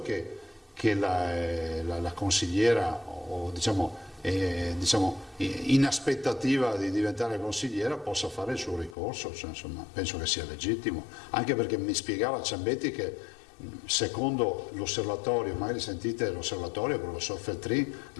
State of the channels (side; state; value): right; drops out; at 9.0 s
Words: che la consigliera, o diciamo in aspettativa di diventare consigliera, possa fare il suo ricorso. Cioè, insomma, penso che sia legittimo, anche perché mi spiegava Ciambetti che secondo l'osservatorio, magari sentite l'osservatorio, il professor Feltrin,